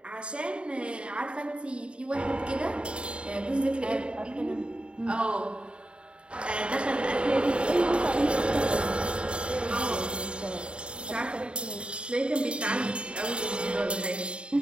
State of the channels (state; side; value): late; left; 0.055 ms